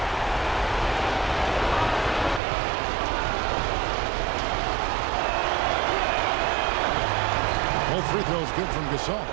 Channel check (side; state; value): left; drops out; at 2.4 s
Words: Free throws good from Gasol.